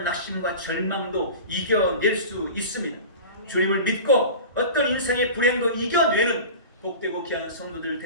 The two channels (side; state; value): both; inverted; correlation -0.34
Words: 낙심과 절망도 이겨낼 수 있습니다. 주님을 믿고 어떤 인생의 불행도 이겨내는 복되고 귀한 성도들